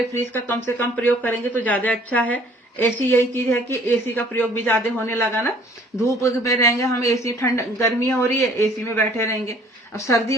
फ्रिज का कम से कम प्रयोग करेंगे तो ज्यादा अच्छा है। एसी यही चीज है कि एसी का प्रयोग भी ज्यादा होने लगा ना, धूप में रहेंगे हम एसी, ठंड गर्मी हो रही है एसी में बैठे रहेंगे, अब सर्दी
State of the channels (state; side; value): normal; both; correlation 0.57